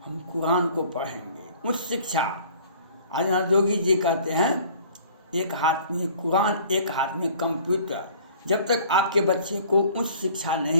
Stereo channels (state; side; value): inverted; both; correlation -0.51